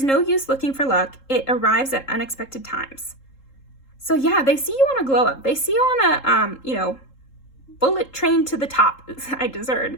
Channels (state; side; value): late; right; 3.7 ms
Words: no use looking for luck. It arrives at unexpected times. So yeah, they see you on a glow up. They see you on a, you know, bullet train to the top. I just